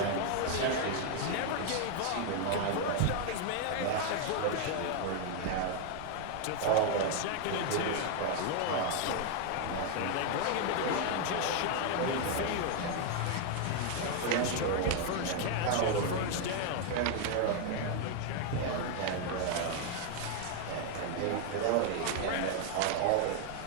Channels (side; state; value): both; different; correlation 0.00